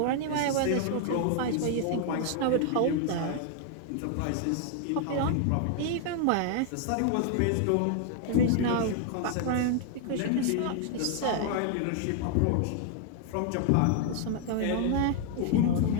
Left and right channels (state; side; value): different; both; correlation 0.00